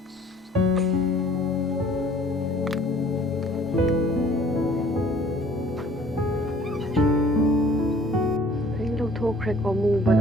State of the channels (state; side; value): normal; both; correlation 0.54